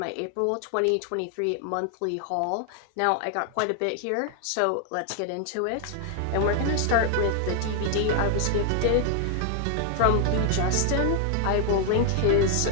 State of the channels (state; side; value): different; both; correlation 0.00